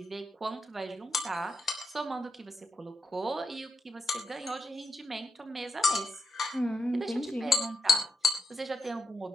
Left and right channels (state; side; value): normal; both; correlation 0.83